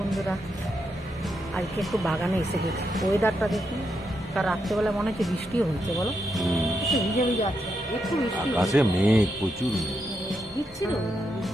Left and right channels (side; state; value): both; normal; correlation 0.82